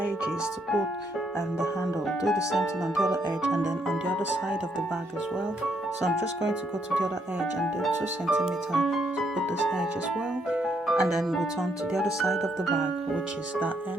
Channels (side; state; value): both; normal; correlation 0.74